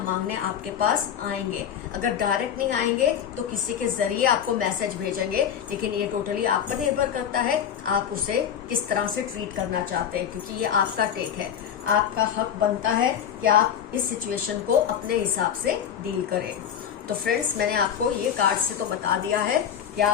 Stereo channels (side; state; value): right; quieter; 8.8 dB